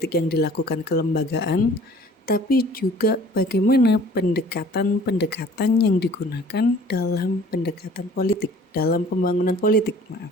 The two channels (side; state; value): both; normal; correlation 0.51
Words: yang dilakukan kelembagaan, tapi juga bagaimana pendekatan-pendekatan yang digunakan dalam pendekatan politik, dalam pembangunan politik,